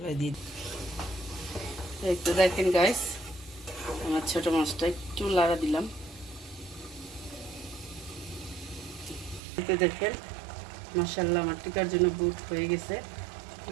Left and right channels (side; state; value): left; drops out; at 9.4 s